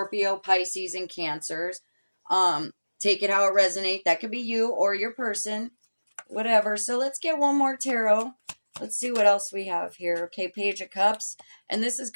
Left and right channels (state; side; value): inverted; both; correlation -1.00